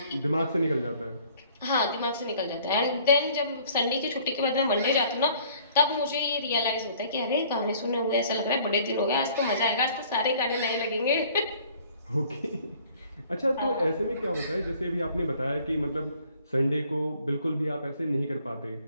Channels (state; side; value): inverted; both; correlation -0.56